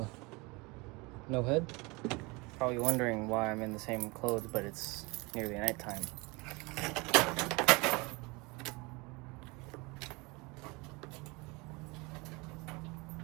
no head? Probably wondering why I'm in the same clothes, but it's nearly nighttime.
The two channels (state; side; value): quieter; left; 26.3 dB